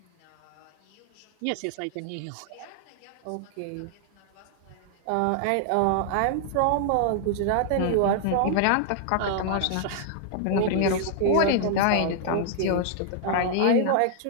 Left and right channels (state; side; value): different; both; correlation -0.01